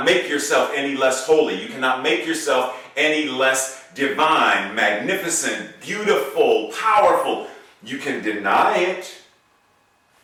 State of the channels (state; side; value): identical; both; correlation 1.00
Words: make yourself any less holy. You cannot make yourself any less divine, magnificent, beautiful, powerful. You can deny it,